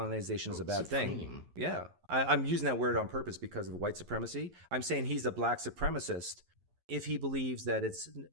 is a bad thing. Yeah, I'm using that word on purpose because of white supremacy. I'm saying he's a black supremacist if he believes that it's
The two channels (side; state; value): left; late; 11 ms